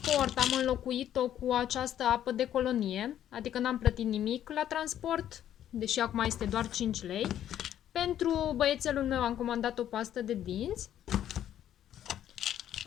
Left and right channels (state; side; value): quieter; right; 11.0 dB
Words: am înlocuit-o cu această apă de colonie, adică n-am plătit nimic la transport, deși acum este doar 5 lei. Pentru băiețelul meu am comandat o pastă de dinți.